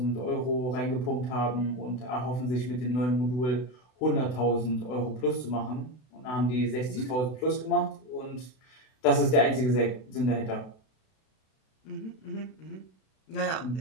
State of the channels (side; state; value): right; late; 32 ms